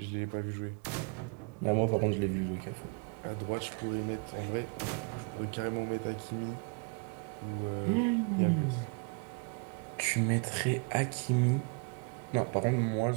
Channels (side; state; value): left; quieter; 35.5 dB